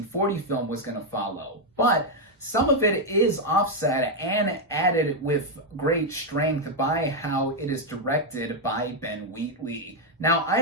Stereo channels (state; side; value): normal; both; correlation 0.02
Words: film was going to follow. But some of it is offset and added with great strength by how it is directed by Ben Wheatley. Now,